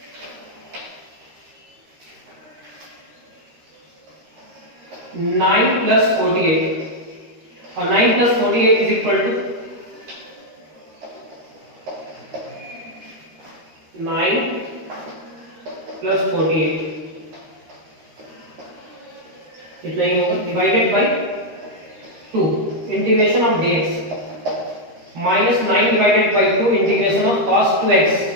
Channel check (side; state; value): left; late; 13 ms